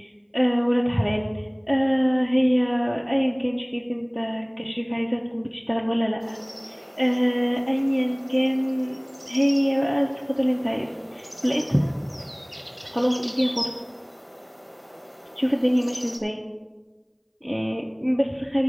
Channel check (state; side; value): identical; both; correlation 1.00